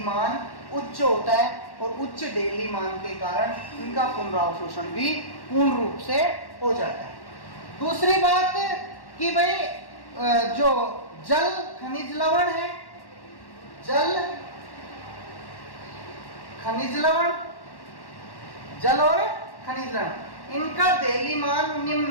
मान उच्च होता है, और उच्च देहली मान के कारण इनका पुनरावशोषण भी पूर्ण रूप से हो जाता है। दूसरी बात कि भाई जो जल खनिज लवण है, जल खनिज लवण, जल और खनिज लवण, इनका देहली मान निम्न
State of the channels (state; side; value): late; right; 1.1 ms